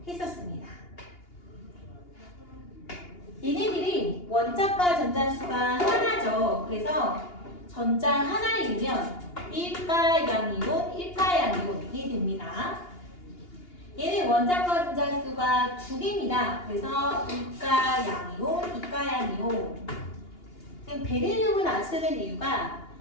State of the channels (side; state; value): right; late; 2.8 ms